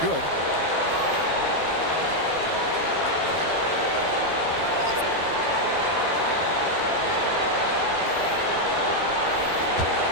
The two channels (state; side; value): late; left; 12 ms